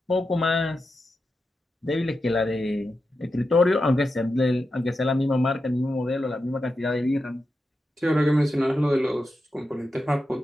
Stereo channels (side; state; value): both; normal; correlation 0.89